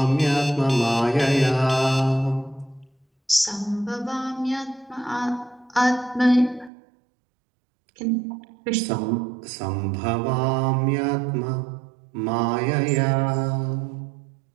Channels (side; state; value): left; drops out; at 6.7 s